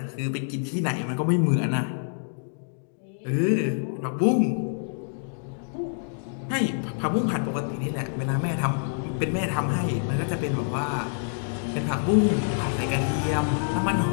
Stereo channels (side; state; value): right; silent; digital silence